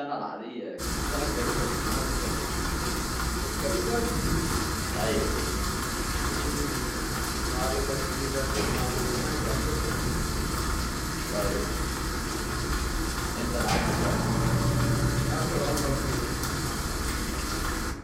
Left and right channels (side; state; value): both; identical; correlation 1.00